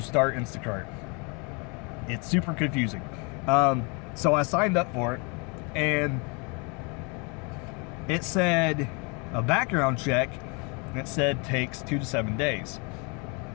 start Instacart, it's super confusing. So I signed up for it, and it said a background check, and it said takes 2 to 7 days.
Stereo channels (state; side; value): quieter; right; 32.6 dB